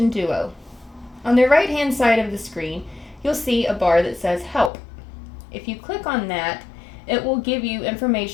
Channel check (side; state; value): right; drops out; at 4.7 s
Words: Duo. On the right hand side of the screen, you'll see a bar that says Help. If you click on that, it will give you